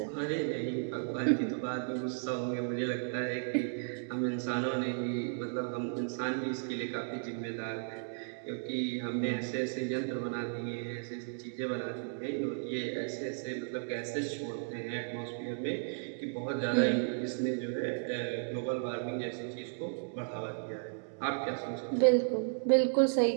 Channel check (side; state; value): left; silent; digital silence